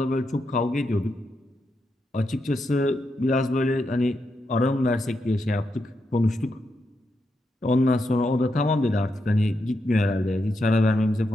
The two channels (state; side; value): normal; both; correlation 0.84